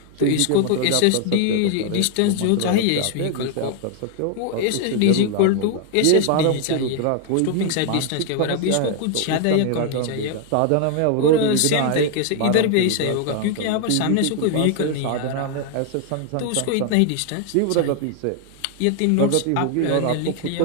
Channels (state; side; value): different; both; correlation 0.00